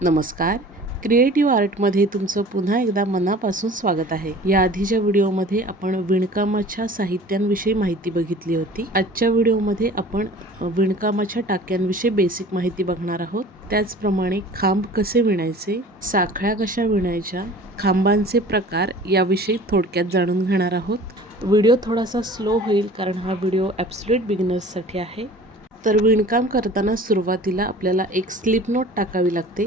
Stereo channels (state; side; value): normal; both; correlation 0.44